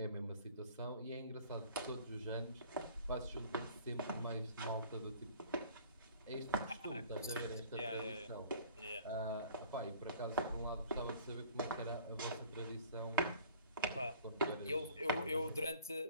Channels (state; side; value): inverted; both; correlation -0.49